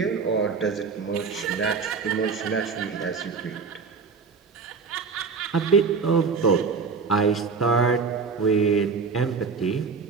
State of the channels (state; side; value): quieter; left; 5.1 dB